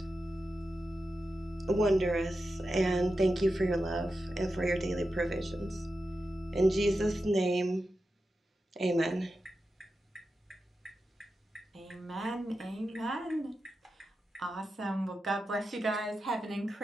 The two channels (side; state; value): both; normal; correlation 0.90